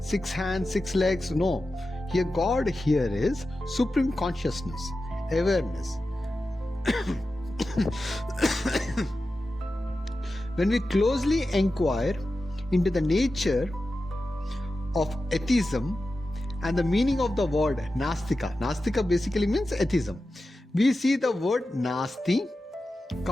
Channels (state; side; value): normal; both; correlation 0.93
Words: hands, 6 legs, no. Here God here is supreme consciousness, awareness. When we closely inquire into the nature of atheism and the meaning of the word Nastika, Nastika basically means atheism, we see the word Nasti